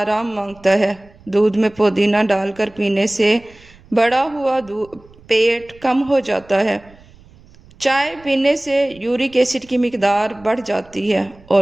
مانگتا ہے۔ دودھ میں پودینہ ڈال کر پینے سے بڑا ہوا پیٹ کم ہو جاتا ہے۔ چائے پینے سے یورک ایسڈ کی مقدار بڑھ جاتی ہے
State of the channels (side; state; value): right; noise; rumble, 26 dB below the sound